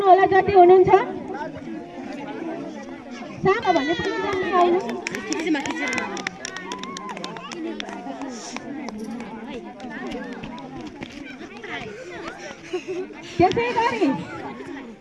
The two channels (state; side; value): identical; both; correlation 1.00